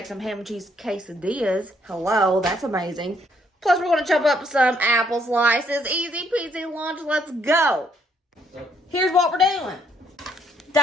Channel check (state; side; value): normal; both; correlation 0.69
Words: some ham and cheese quesadillas. Hello, that's amazing. Plus, we're going to chop up some apple slices. Easy peasy lunch. Let's go. Here's what we're doing.